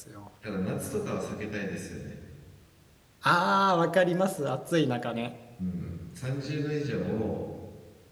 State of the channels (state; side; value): identical; both; correlation 1.00